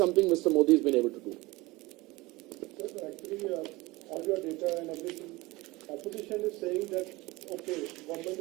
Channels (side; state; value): left; quieter; 21.5 dB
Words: Mr. Modi has been able to do. Sir, actually, all your data and everything, opposition is saying that, okay, government